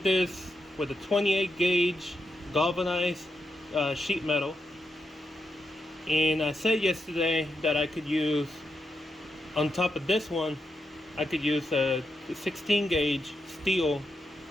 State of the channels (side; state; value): both; normal; correlation 0.85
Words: this with a 28 gauge galvanized sheet metal. And I said yesterday that I could use, on top of this one, I could use a 16 gauge steel